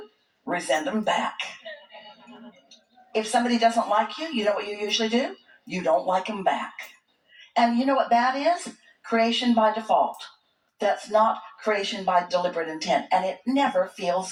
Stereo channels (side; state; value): both; identical; correlation 1.00